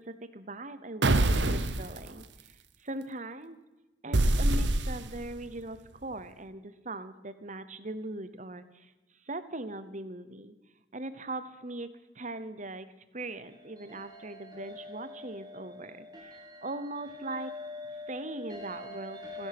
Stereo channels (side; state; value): both; normal; correlation 0.66